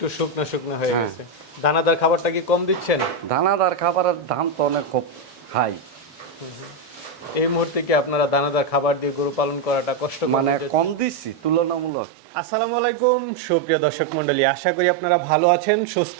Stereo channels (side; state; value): left; drops out; at 11.9 s